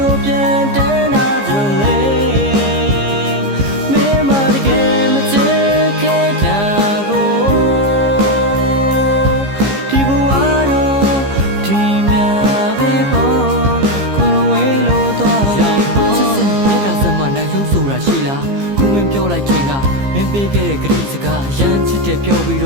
ရှိလားခုမင်းပြောလိုက်ခြင်းကမင်းပေးခဲ့တဲ့ဂရိစကားရမ်းချစ်တဲ့ပြောပြီးတ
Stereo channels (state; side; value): late; left; 15 ms